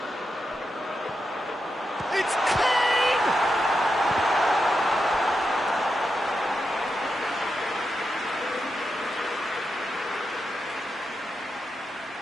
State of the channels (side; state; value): both; normal; correlation 0.87